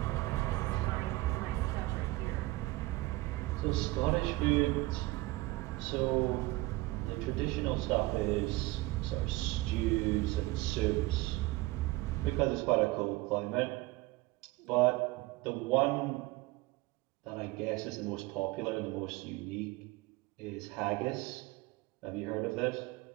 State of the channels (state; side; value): quieter; left; 20.6 dB